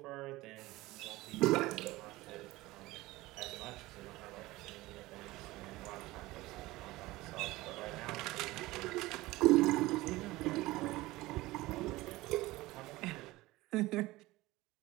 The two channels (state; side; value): quieter; left; 19.2 dB